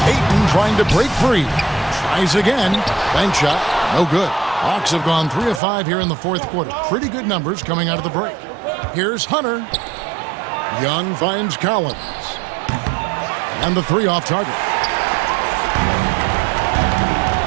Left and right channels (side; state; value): left; drops out; at 5.6 s